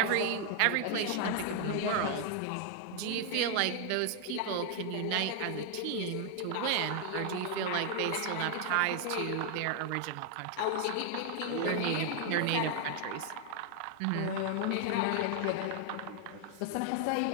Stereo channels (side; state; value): both; different; correlation 0.00